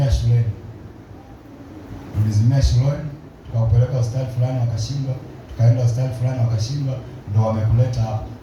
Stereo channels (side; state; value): both; identical; correlation 1.00